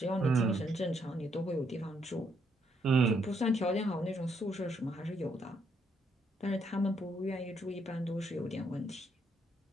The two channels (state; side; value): normal; both; correlation 0.74